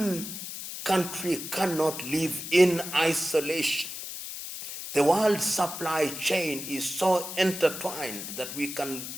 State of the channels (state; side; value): noise; left; hiss, 8 dB below the sound